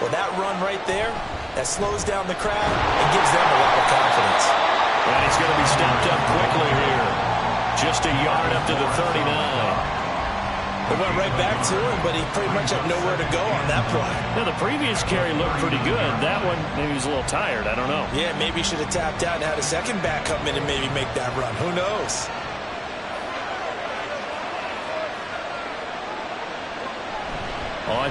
that run right there, that slows down the crowd and gives them a lot of confidence. And he's going to be stopped up quickly here. Just a yard up to the 39. They went right back to him, but he pretty much had nowhere to go on that play. Now, the previous carry looked pretty good. That one, maybe he was a little tired. I don't know. Yeah, maybe he should have tapped out and had a second back come in and maybe make that run. Who knows?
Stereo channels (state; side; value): identical; both; correlation 1.00